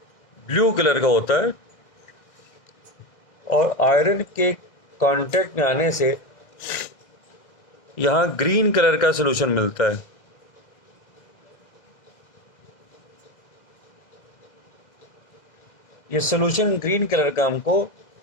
ब्लू कलर का होता है और आयरन के कांटेक्ट में आने से यहाँ ग्रीन कलर का सॉल्यूशन मिलता है। ये सॉल्यूशन ग्रीन कलर का हमको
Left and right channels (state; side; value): late; right; 1.6 ms